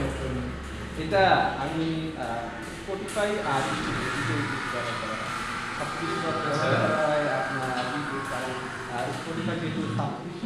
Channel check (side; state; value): both; identical; correlation 1.00